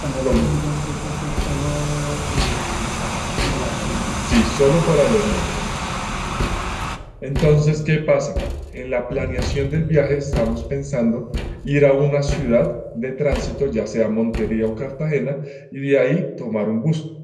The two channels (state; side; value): identical; both; correlation 1.00